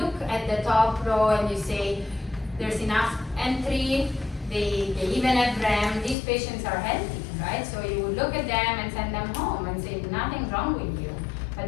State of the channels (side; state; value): right; drops out; at 6.2 s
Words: at the top row and you say, there's enough entry, they even have REM, these patients are healthy, right? So you would look at them and send them home and say, nothing wrong with you. But